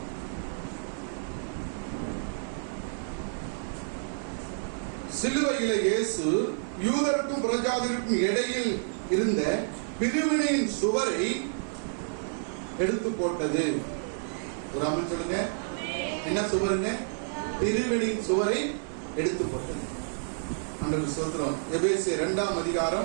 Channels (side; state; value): left; silent; digital silence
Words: சிலுவையில இயேசு யூதருக்கும் புறஜாதிக்கும் இடையில் இருந்த பிரிவினையின் சுவரை எடுத்து போட்டது. ஒரு அமன் சொல்லுங்க. என்ன சுவருங்க? பிரிவினையின் சுவரை எடுத்து போட்டது. ஆண்டவருக்கு ஸ்தோத்திரம். எபேசியர் 2ஆம்